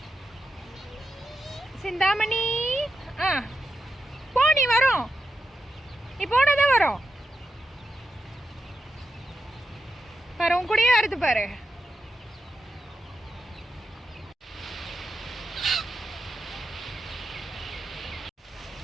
சிந்தாமணி. போ, நீ வரும், நீ போனதான் வரும் பாரு, உன் கூடயே வருது பாரு.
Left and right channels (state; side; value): normal; both; correlation 0.87